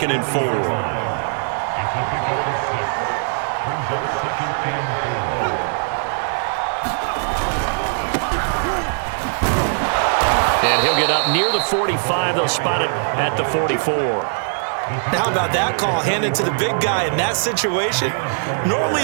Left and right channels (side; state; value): left; silent; digital silence